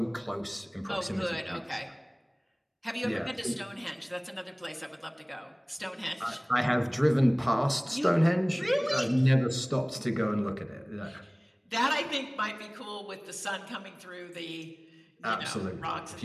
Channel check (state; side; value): identical; both; correlation 1.00